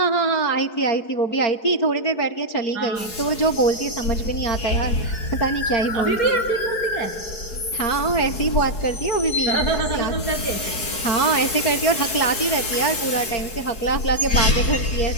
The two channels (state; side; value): late; right; 4.7 ms